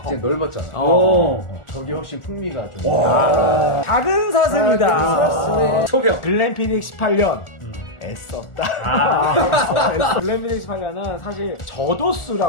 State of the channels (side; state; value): right; late; 1.4 ms